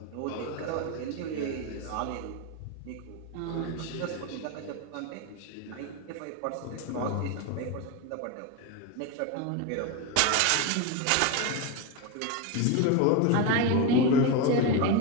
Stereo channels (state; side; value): different; both; correlation 0.03